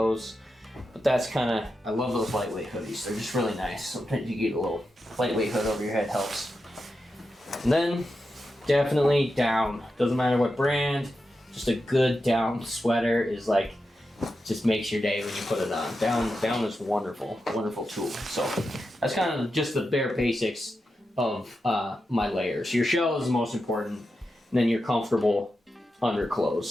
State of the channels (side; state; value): both; normal; correlation 0.89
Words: But that's kind of, I love those lightweight hoodies. They're just really nice. Sometimes you get a little lightweight hood over your head helps. And then, definitely down. Doesn't matter what brand, just a good down sweater is like, just makes your day when you put it on. Down is wonderful, wonderful tool. So that's kind of just the bare basics of my layers. Your shell is the most important, and then your comfortable